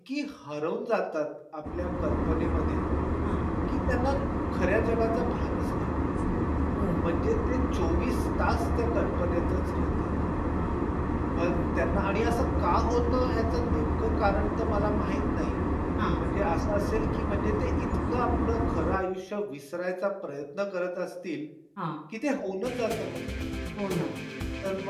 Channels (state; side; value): identical; both; correlation 1.00